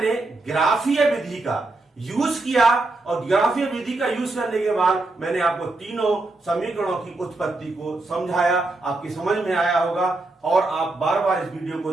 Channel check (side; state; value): left; quieter; 3.1 dB